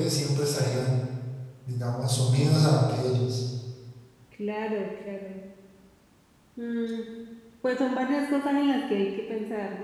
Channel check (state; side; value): identical; both; correlation 1.00